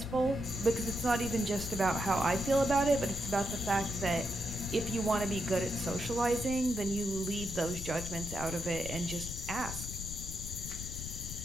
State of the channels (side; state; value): left; noise; rumble, 8 dB below the sound